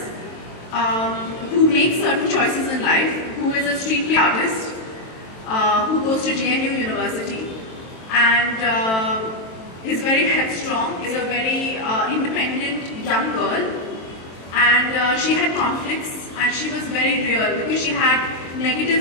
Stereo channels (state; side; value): late; right; 23 ms